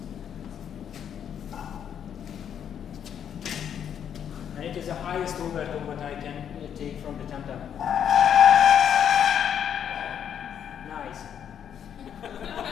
And it is the highest overtone what I can take from the tam-tam. Nice.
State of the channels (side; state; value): right; quieter; 8.8 dB